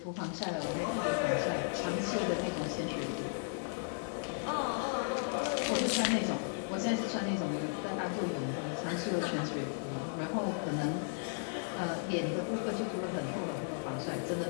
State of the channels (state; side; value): silent; right; digital silence